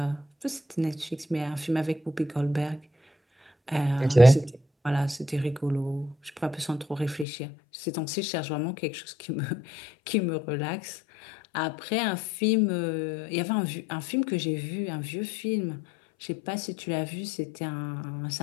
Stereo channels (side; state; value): right; drops out; at 7.2 s